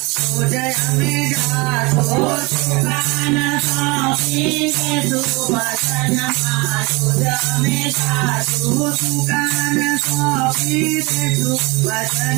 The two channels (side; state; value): left; quieter; 26.1 dB